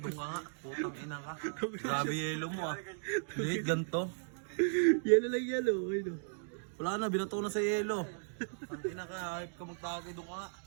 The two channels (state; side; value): silent; left; digital silence